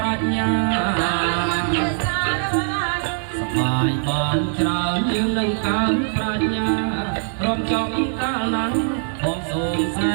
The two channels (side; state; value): left; silent; digital silence